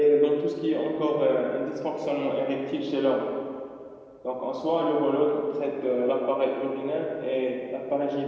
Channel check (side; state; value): both; identical; correlation 1.00